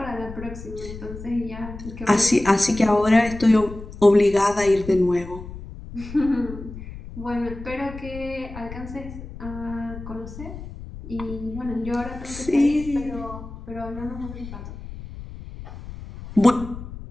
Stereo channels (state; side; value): noise; left; rumble, 12 dB below the sound